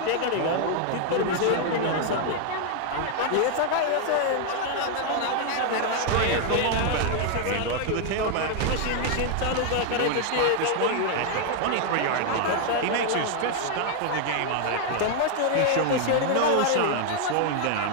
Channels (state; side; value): different; both; correlation 0.00